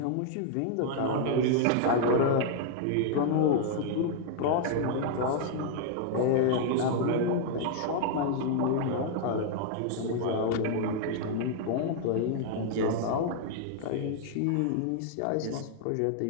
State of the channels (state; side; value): different; both; correlation -0.01